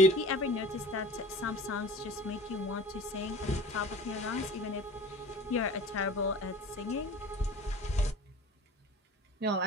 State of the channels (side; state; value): both; normal; correlation 0.41